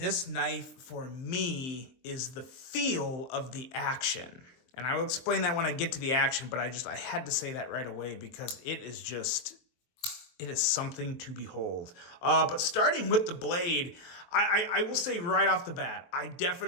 knife for me is the feel of the action. And I will explain that when I get to the action, but I had to say that right away because it is something to behold. But starting with the blade, I will say right off the bat, I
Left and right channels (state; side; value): late; right; 23 ms